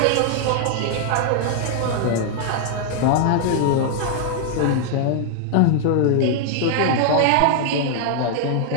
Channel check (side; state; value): both; different; correlation 0.00